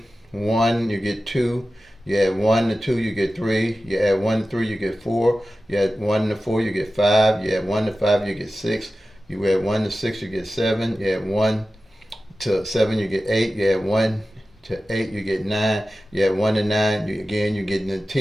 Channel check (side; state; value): both; normal; correlation 0.94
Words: 1, you get 2. You add 1 to 2, you get 3. You add 1 to 3, you get 4. You add 1 to 4, you get 5. You add 1 to 5, you get 6. You add 1 to 6, you get 7. You add 1 to 7, you get 8. You add 1 to 8, you get 9. You add 1 to 9, you're getting the